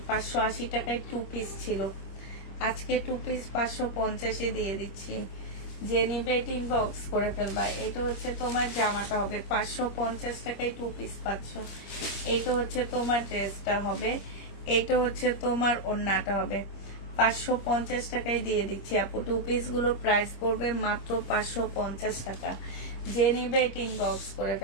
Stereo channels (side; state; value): right; late; 25 ms